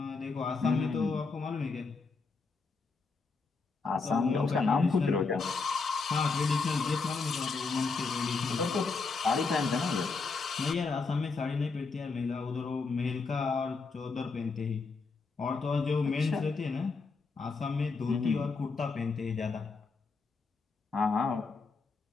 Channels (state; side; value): quieter; right; 4.4 dB